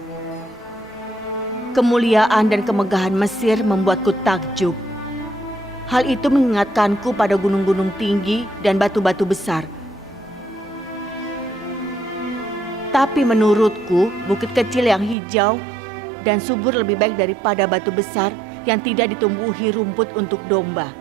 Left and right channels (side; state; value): left; drops out; at 15.2 s